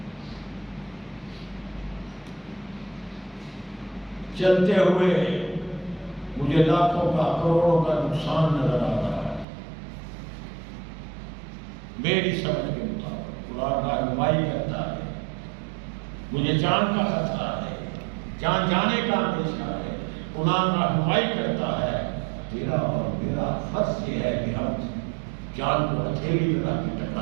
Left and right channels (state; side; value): drops out; left; at 9.5 s